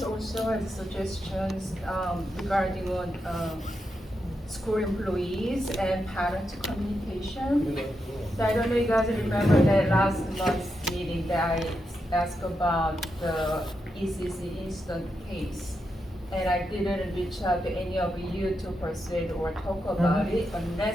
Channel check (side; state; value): both; normal; correlation 0.85